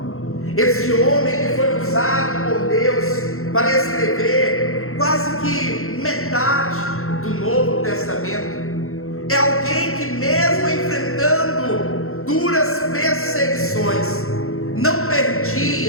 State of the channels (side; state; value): right; late; 0.62 ms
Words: esse homem que foi usado por Deus para escrever quase que metade do Novo Testamento, é alguém que, mesmo enfrentando duras perseguições, não